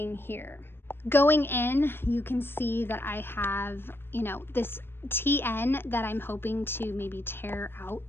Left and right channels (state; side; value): late; right; 0.11 ms